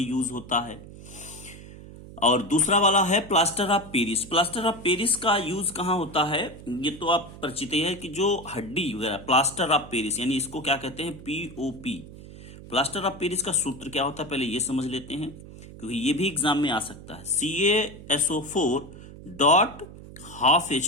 यूज होता है। और दूसरा वाला है plaster of Paris. Plaster of Paris का यूज कहां होता है? ये तो आप परिचित है कि जो हड्डी वगैरह, प्लास्टर ऑफ पेरिस यानी इसको क्या कहते हैं, POP। प्लास्टर ऑफ पेरिस का सूत्र क्या होता है पहले ये समझ लेते हैं, क्योंकि ये भी एग्जाम में आ सकता है।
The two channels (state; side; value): noise; right; hum, 16 dB below the sound